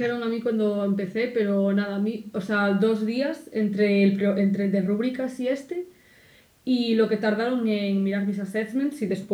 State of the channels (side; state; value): both; identical; correlation 1.00